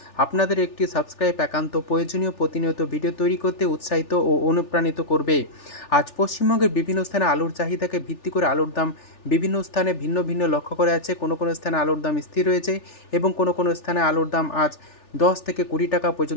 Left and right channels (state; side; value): late; right; 3.4 ms